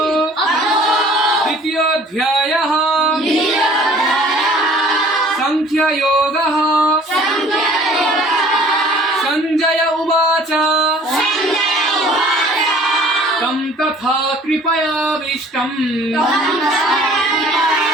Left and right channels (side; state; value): both; normal; correlation 0.52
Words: द्वितीयोऽध्यायः सांख्ययोगः। संजय उवाच तं तथा कृपयाविष्टम्